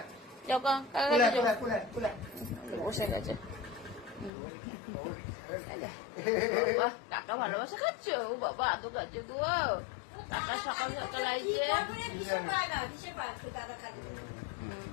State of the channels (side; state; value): right; drops out; at 4.3 s